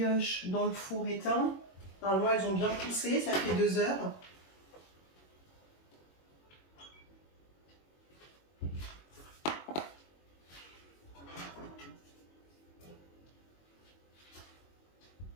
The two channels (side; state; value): right; late; 21 ms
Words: dans le four éteint. Normalement, elles ont bien poussé, ça fait 2 heures.